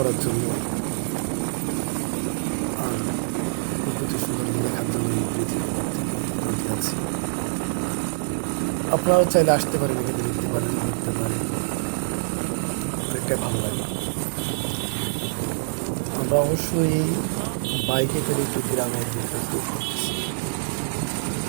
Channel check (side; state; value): left; silent; 62 dB below the other